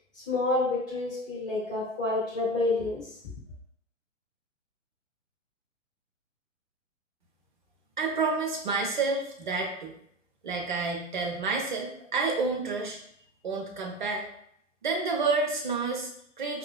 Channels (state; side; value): normal; both; correlation 0.26